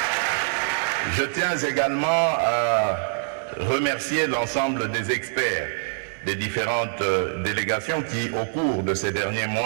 Je tiens également à remercier l'ensemble des experts des différentes délégations qui, au cours de ces derniers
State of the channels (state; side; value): silent; left; digital silence